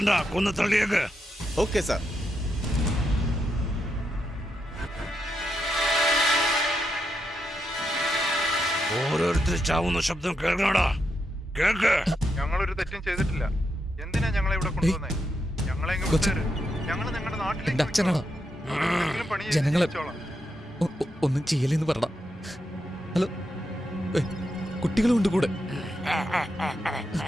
കൊന്നു തള്ളിയേക്ക്. Okay sir. ഓരോരുത്തർ ചാവുന്ന ശബ്ദം കേൾക്കണടാ, കേൾക്ക്. ഞങ്ങളൊരു തെറ്റും ചെയ്തിട്ടില്ല. എന്തിനാ ഞങ്ങളെ ഇവിടെ കൊണ്ടുവന്നേ? ഞങ്ങളെ ഞങ്ങള് നിങ്ങളുടെ എന്റെ അച്ഛനാടാ. ജനങ്ങളെ ഒന്നും ചെയ്യലെന്ന് പറടാ. ഹലോ, കുട്ടികളുണ്ട് കൂടെ.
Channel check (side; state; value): both; normal; correlation 0.83